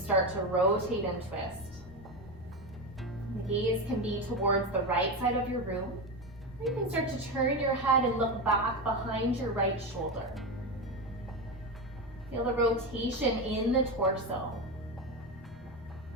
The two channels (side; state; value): both; normal; correlation 0.17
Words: to rotate and twist. The gaze can be towards the right side of your room, or you can start to turn your head and look back behind your right shoulder. Feel the rotation in the torso.